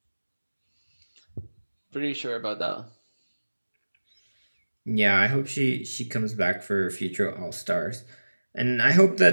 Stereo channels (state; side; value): inverted; both; correlation -1.00